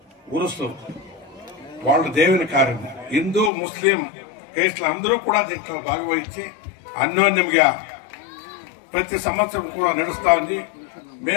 ఉరుసు వాళ్ళ దేవుని కార్యం హిందూ ముస్లిం కేసులు అందరూ కూడా దీంట్లో భాగవహించి అన్యోన్యంగా ప్రతి సంవత్సరం కూడా నడుస్తా ఉంది.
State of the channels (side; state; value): right; drops out; at 3.5 s